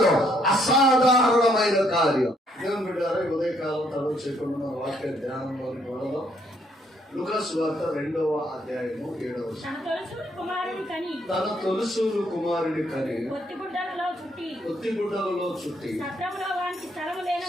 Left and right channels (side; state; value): both; normal; correlation 0.69